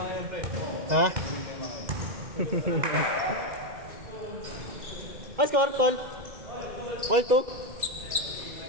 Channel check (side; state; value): left; late; 2.0 ms